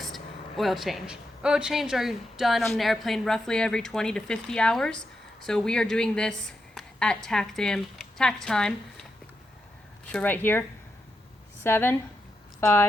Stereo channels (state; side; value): normal; both; correlation 0.86